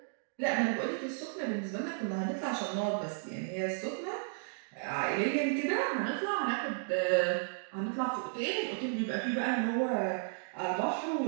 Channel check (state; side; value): silent; left; digital silence